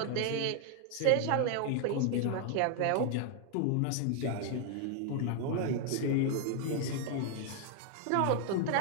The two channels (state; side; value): different; both; correlation 0.00